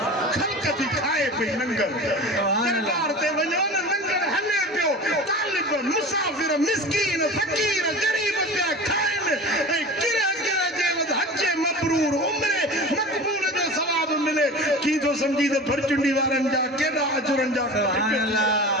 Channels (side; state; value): both; normal; correlation 0.34